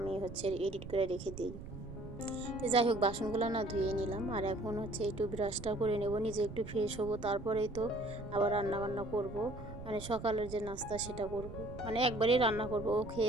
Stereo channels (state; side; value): noise; right; rumble, 11 dB below the sound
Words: হচ্ছে এডিট করে রেখে দিই। তো যাই হোক, বাসনগুলো না ধুয়ে নিলাম, আর এখন হচ্ছে একটু ব্রাশটা করে নেব, নিজে একটু ফ্রেশ হবো, তারপরেই তো আবার রান্না বান্না করব। মানে সকালের যে নাস্তা সেটা করব, মানে একবারেই রান্না করব, ও